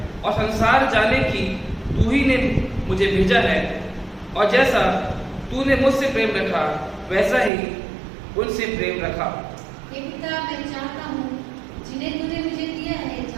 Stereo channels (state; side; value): drops out; left; at 7.5 s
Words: और संसार जाने की तू ही ने मुझे भेजा है, और जैसा तूने मुझसे प्रेम रखा वैसा ही उनसे प्रेम रखा। हे पिता, मैं चाहता हूँ जिन्हें तूने मुझे दिया है,